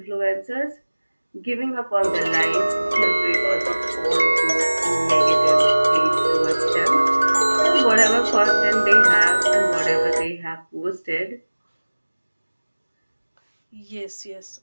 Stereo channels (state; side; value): inverted; both; correlation -1.00